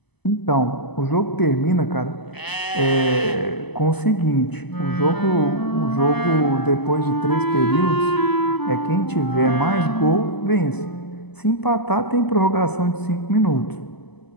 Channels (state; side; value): late; right; 0.99 ms